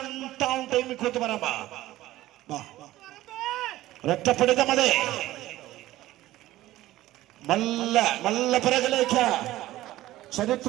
town team Koothuparamba. ഒരൊറ്റപ്പിടുത്തം. അതെ നല്ല പിറകിലേക്ക്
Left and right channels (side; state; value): left; quieter; 15.9 dB